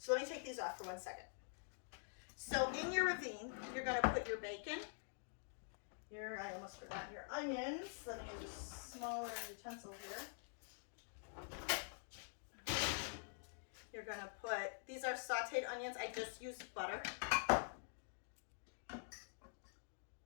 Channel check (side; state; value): right; silent; digital silence